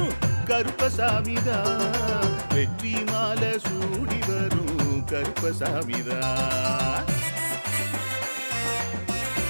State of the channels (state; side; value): inverted; both; correlation -1.00